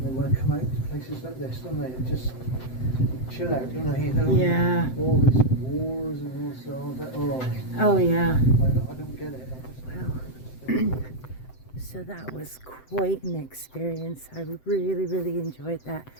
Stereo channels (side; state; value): right; late; 7.8 ms